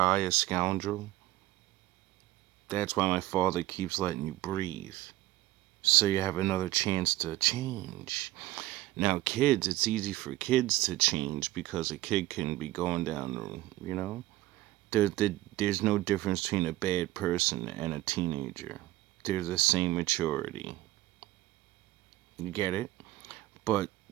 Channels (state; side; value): quieter; left; 16.8 dB